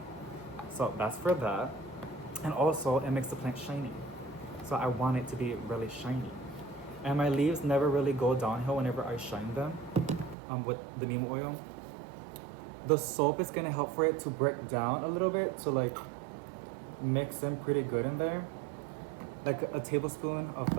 So that's for that. And also it makes the plant shiny. So I want it to be really shiny. And my leaves never really go downhill whenever I shine them with the neem oil. The soap is gonna help for it to break down a little bit, to like mix in pretty good in there. Like a tablespoon of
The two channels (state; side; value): drops out; left; at 10.4 s